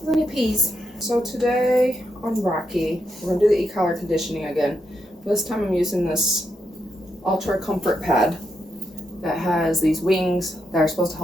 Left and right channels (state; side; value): normal; both; correlation 0.82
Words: when he pees. So today on Rocky, we're gonna do the e-collar conditioning again. This time I'm using this Ultra Comfort Pad that has these wings that are supposed to